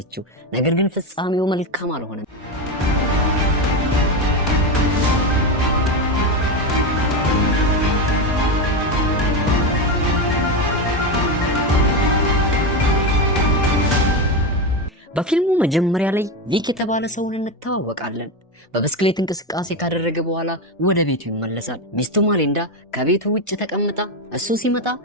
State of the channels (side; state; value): both; normal; correlation 0.14